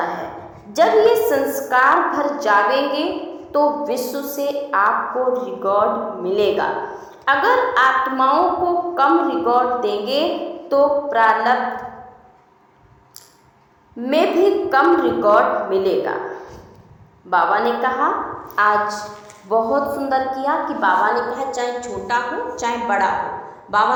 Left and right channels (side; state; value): both; identical; correlation 1.00